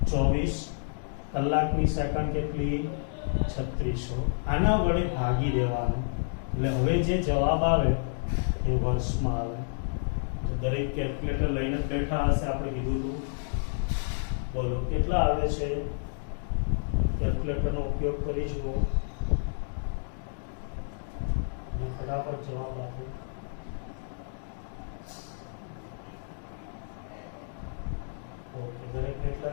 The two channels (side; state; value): right; silent; digital silence